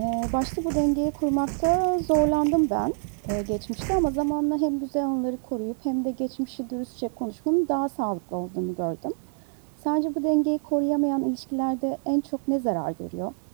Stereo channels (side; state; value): left; silent; digital silence